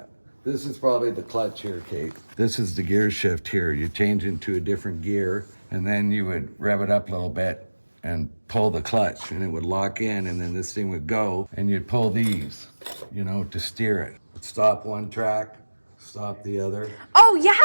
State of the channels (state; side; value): inverted; both; correlation -1.00